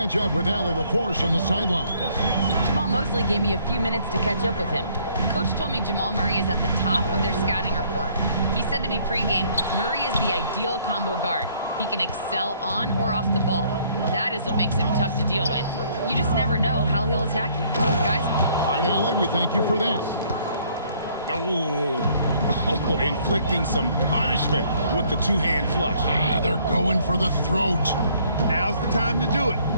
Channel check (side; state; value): both; inverted; correlation -0.63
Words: up with Allie LaForce on the sideline. Jamal Mosley gave me a few minutes to catch up with him. Coach told me Jamal Murray is at the top of their scouting report. He said to me pregame, Murray is the ideal combo guard. He can excel on or off the ball. That is what makes him tough to deal with. You just never know how he'll attack you. Guys? All right, Allie, we thank you for that. Oh, inflicting some punishment with the two-hand flush. They're going for the throat. Now's the time to do it.